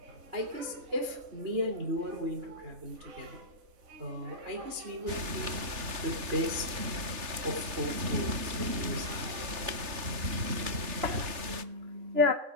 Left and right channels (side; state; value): left; late; 3.3 ms